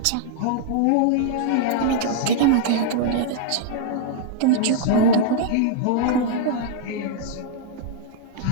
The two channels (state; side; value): different; both; correlation -0.01